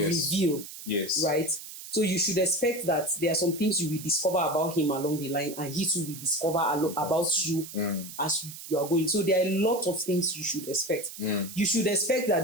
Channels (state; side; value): noise; right; hiss, 12 dB below the sound